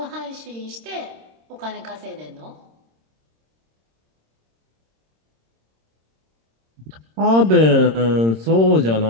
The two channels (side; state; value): left; late; 26 ms